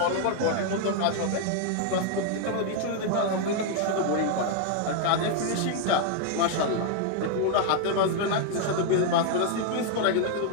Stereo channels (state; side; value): different; both; correlation 0.00